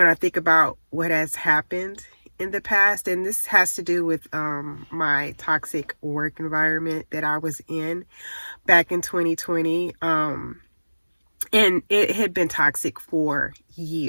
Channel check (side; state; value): both; inverted; correlation -1.00